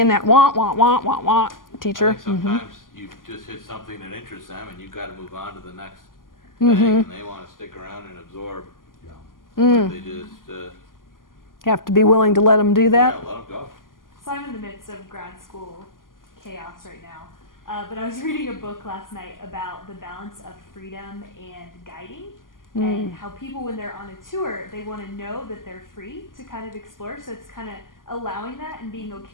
that wah teacher. I think sometimes you just hit something that interests them and you've got to move on to the next thing, and they want to stick around and absorb. They just You have to be willing to let them do that. yeah, let them go. So I'm in the midst of grad school chaos right now. But I was reading a book last night about the balance of freedom and guiding. And how people, when they're on a tour, they want to know that they're free to kind of explore. So it's kind of allowing that and being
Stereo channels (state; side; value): late; right; 0.90 ms